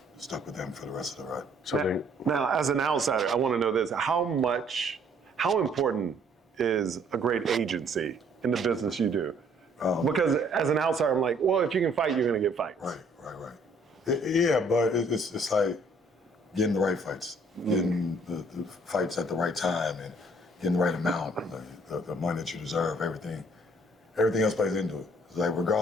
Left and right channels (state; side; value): normal; both; correlation 0.62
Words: stuck with them for the rest of the ride. So now, as an outsider, I want to know this: how important is a great agency in the business you do? Because as an outsider, I'm like, well, if you can fight, you're going to get fights. Right. Yeah, but it's like getting the right fights, getting the fights at the right time, and getting the right amount, the money that you deserve, everything else plays into it. It's like,